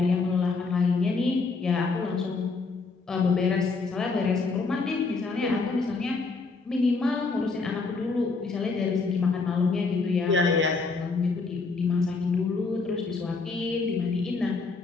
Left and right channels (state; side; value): quieter; right; 4.2 dB